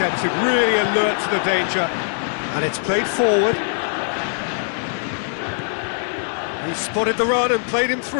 really alert to the danger. And it's played forward. He spotted the run and played him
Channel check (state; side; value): silent; right; digital silence